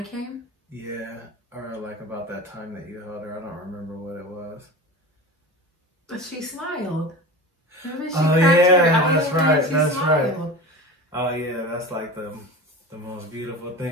came? Yeah, or like about that time that you held her. I don't remember what it was. But she smiled. Remember, she that's right. That's smiled. Right. Oh yeah, that's like the most beautiful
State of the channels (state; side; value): normal; both; correlation 0.31